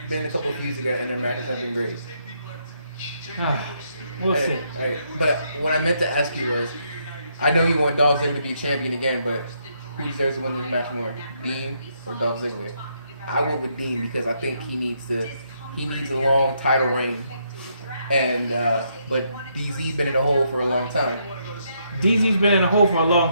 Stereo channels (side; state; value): both; inverted; correlation -0.75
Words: been a couple of feuds together, and their matches have been great. We'll see. Hey, but what I meant to ask you was, I know you want Dolph Ziggler to be champion again, but who deserves to win this match more, Dean or Dolph Ziggler? I went with Dean because I think he needs a long title reign, and but DZ been in the hole for a long time. DZ's been in the hole for a